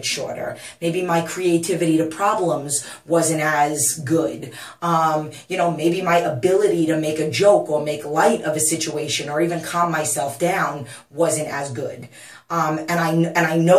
shorter. Maybe my creativity to problems wasn't as good. You know, maybe my ability to make a joke or make light of a situation or even calm myself down wasn't as good. And I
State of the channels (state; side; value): identical; both; correlation 1.00